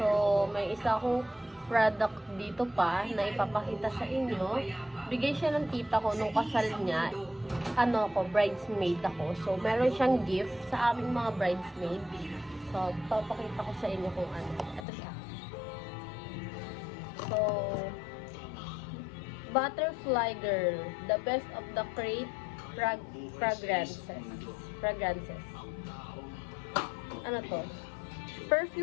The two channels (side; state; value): right; drops out; at 14.9 s